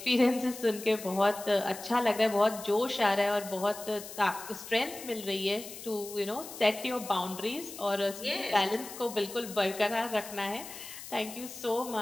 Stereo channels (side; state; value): left; noise; hiss, 13 dB below the sound